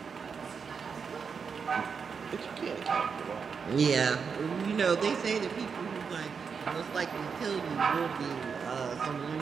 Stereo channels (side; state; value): left; quieter; 5.9 dB